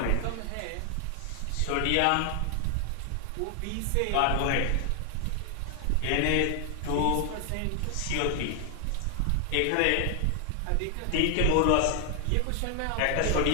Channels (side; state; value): both; different; correlation 0.00